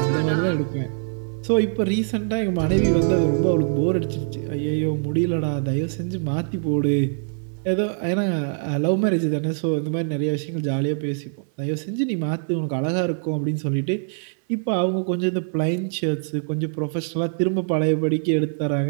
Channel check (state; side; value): silent; left; 61 dB below the other